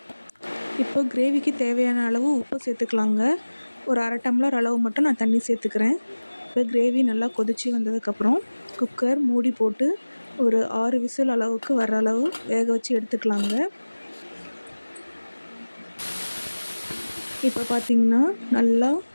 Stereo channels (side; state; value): both; inverted; correlation -1.00